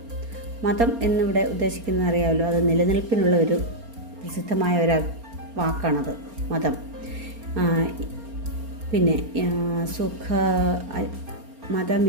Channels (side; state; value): left; late; 4.3 ms